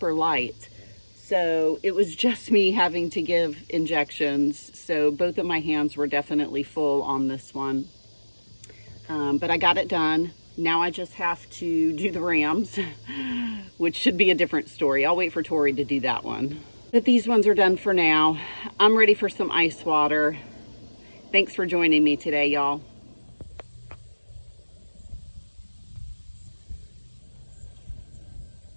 light. So it was just me having to give injections. So both of my hands were definitely full on this one. But I got it done. Now I just have to do the rams, which should be a different story. I'll wait for Tori to do that one. But these ones are done for now. I'm ready for some ice water. Thanks for joining me today, y'all.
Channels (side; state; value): both; inverted; correlation -1.00